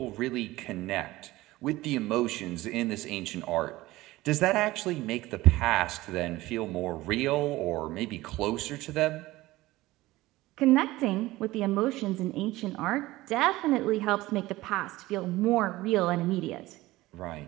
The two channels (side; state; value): left; quieter; 18.3 dB